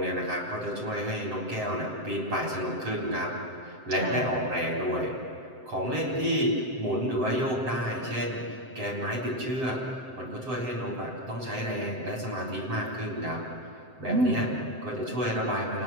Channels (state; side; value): late; left; 7.8 ms